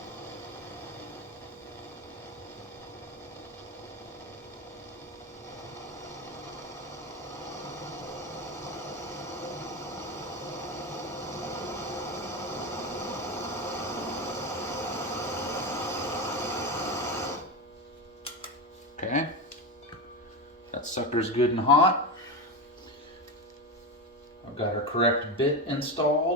Okay, that sucker's good and hot. I've got our correct bit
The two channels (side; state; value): both; normal; correlation 0.18